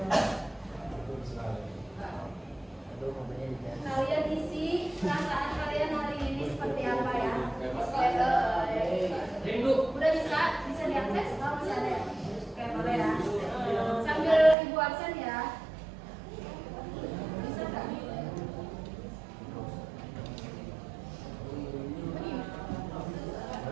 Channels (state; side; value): drops out; left; at 14.6 s